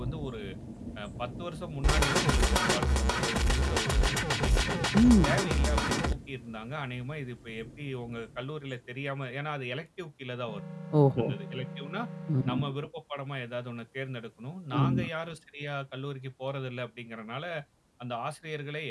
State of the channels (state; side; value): identical; both; correlation 1.00